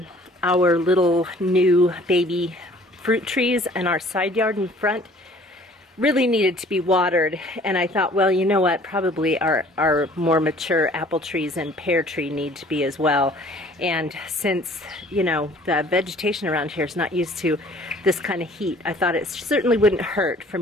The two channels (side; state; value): both; normal; correlation 0.53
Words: little new baby fruit trees and our side yard in front really needed to be watered, and I thought, well, you know what, probably our more mature apple trees and pear tree need to be as well. And since, you know, the vegetation around here is not used to this kind of heat, I thought it certainly wouldn't hurt for